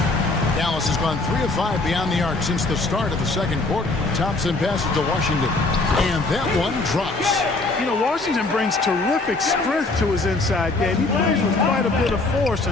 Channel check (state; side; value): quieter; right; 3.3 dB